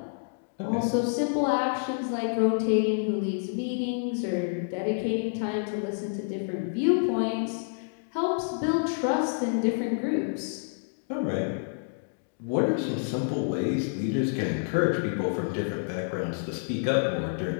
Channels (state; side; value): silent; right; digital silence